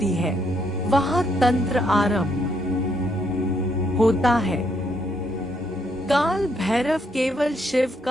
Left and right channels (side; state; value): both; normal; correlation 0.73